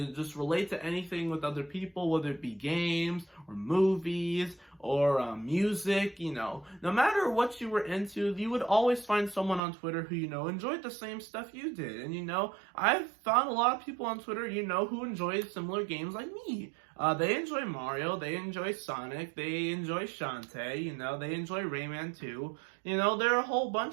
just relate to anything with other people, whether it be games, or movies, or music, no matter what you were into, you would always find someone on Twitter who, enjoyed the same stuff you did. And, I've found a lot of people on Twitter, who enjoy similar games like me. They enjoy Mario, they enjoy Sonic, they enjoy Shantae, they enjoy Rayman too. There are a whole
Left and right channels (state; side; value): drops out; left; at 9.6 s